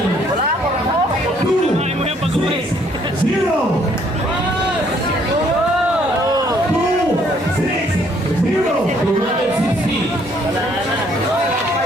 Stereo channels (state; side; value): normal; both; correlation 0.65